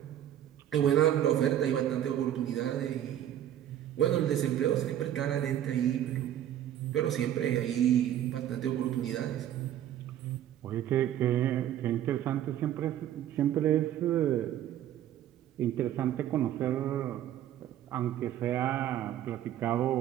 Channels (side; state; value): left; quieter; 11.4 dB